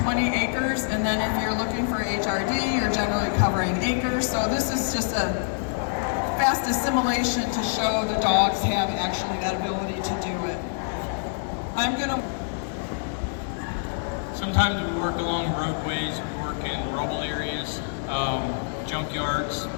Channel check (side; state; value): right; silent; digital silence